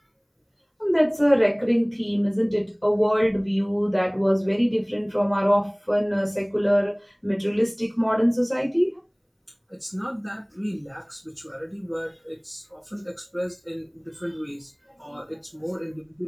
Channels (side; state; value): both; identical; correlation 1.00